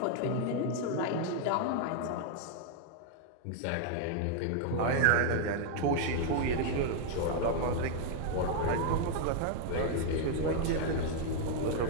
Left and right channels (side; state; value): both; different; correlation 0.00